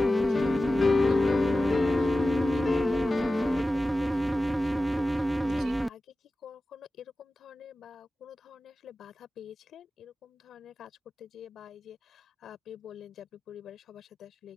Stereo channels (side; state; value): both; normal; correlation 0.95